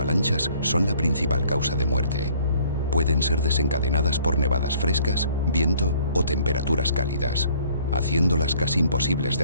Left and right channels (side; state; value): both; inverted; correlation -0.58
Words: son la principal causa de muerte. Pueden ser desencadenadas por nevadas frescas, viento o temperaturas cálidas, haciéndolas casi imposibles